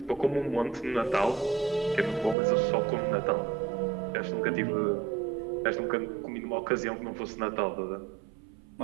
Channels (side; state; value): left; drops out; at 2.4 s